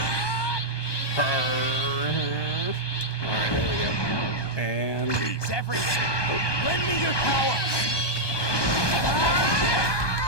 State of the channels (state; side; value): late; right; 1.2 ms